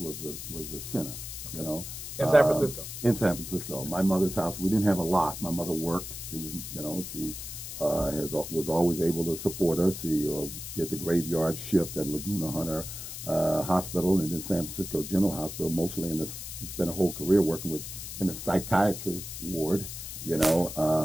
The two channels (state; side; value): noise; left; hiss, 9 dB below the sound